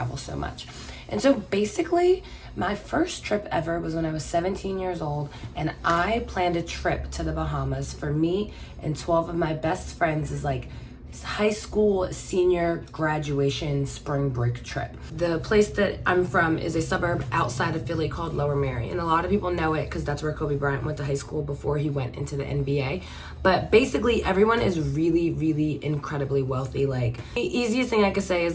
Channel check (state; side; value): identical; both; correlation 1.00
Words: so much? And so basically, my first trip ever was when I was 17 years old, and I planned a trip to the Bahamas for me and 12 of my best friends as like high school senior graduation spring break trip. The place that I'm from is a suburb outside of Philly called Lower Merion, and a lot of people know it because that's where Kobe Bryant went to high school before he went into the NBA. But basically everyone is really, really incredibly wealthy. Like, the easiest thing I could say